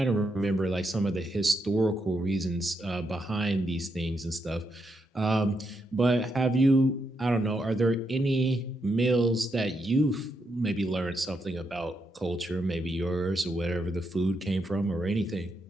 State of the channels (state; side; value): normal; both; correlation 0.81